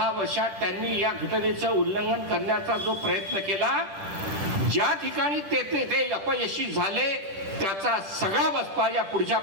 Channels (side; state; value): left; late; 10 ms